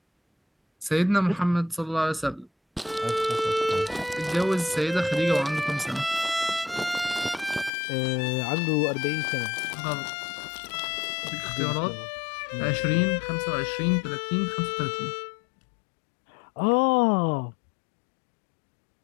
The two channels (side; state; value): right; drops out; at 7.7 s